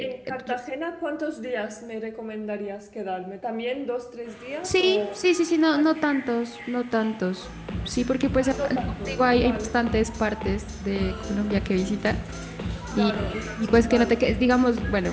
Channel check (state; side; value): identical; both; correlation 1.00